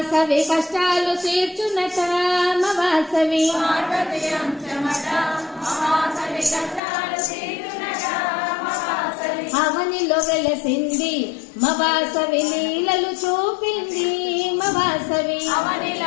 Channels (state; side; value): drops out; right; at 6.8 s